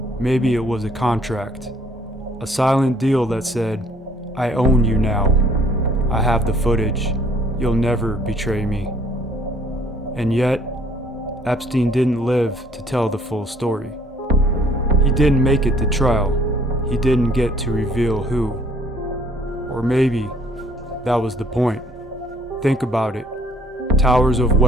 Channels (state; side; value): normal; both; correlation 0.60